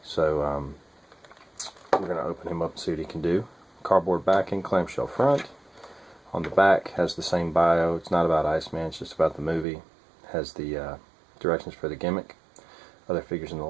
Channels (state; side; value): drops out; left; at 9.7 s